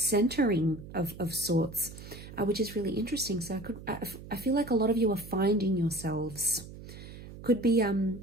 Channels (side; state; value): right; noise; hum, 14 dB below the sound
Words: of sorts, which is really interesting. So I feel like a lot of you are finding yourselves. Could be